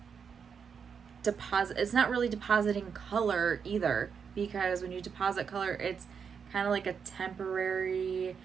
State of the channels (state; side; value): quieter; left; 6.6 dB